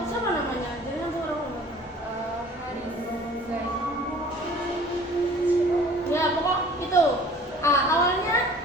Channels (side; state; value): both; normal; correlation 0.49